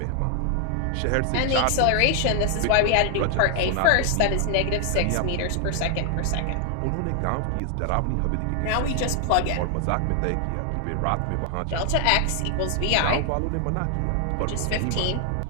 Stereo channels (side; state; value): both; different; correlation 0.00